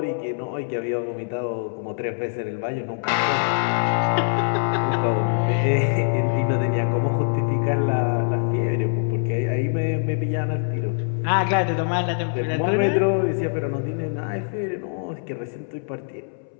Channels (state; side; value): silent; right; 63 dB below the other